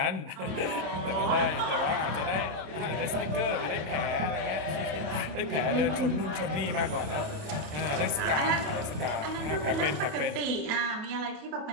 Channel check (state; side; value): late; left; 27 ms